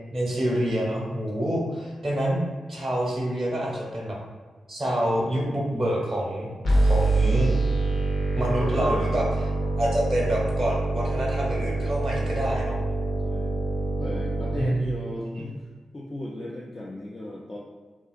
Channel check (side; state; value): both; normal; correlation 0.90